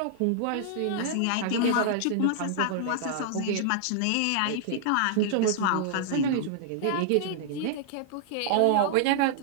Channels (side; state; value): both; different; correlation -0.01